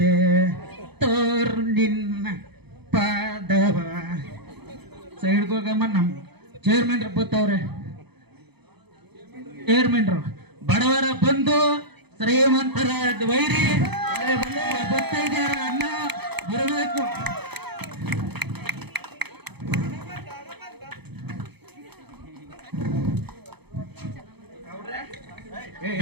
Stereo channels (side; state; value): left; late; 0.98 ms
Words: ತೋರ್ ನಿನ್ನ ಪಾದವ ಸೈಡ್ಗೋಗಮ್ಮ. ನಮ್ ಚೇರ್ಮನ್ರು ಬತ್ತವ್ರೆ. ಚೇರ್ಮನ್ರು ಬಡವರ ಬಂದು ಶ್ರೀಮಂತರ ವೈರಿ ಬರ್ತಾ ಇದ್ದಾರ. ಅನ್ನ ಬರಬೇಕು.